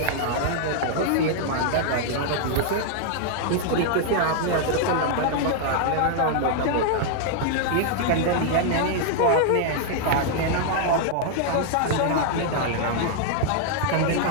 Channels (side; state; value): both; different; correlation 0.00